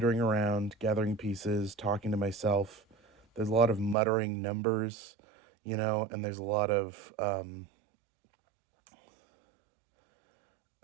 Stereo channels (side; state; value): left; drops out; at 4.0 s